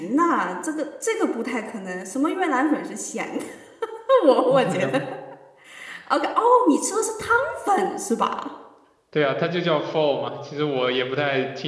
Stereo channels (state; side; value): identical; both; correlation 1.00